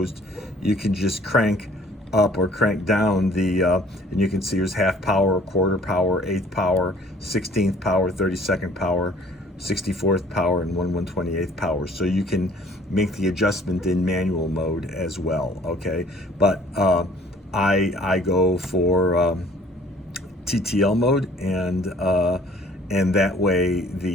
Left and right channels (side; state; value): both; normal; correlation 0.56